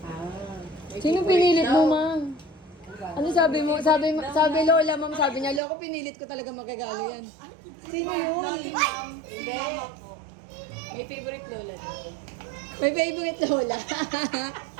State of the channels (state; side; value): drops out; left; at 5.6 s